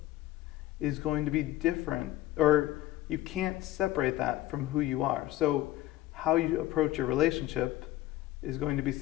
is going to be different, or you can't separate that from who you are. So how you approach your relationship is going to be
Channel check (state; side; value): quieter; right; 15.5 dB